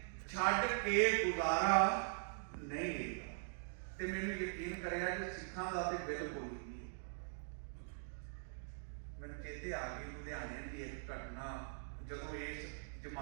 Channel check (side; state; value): left; silent; digital silence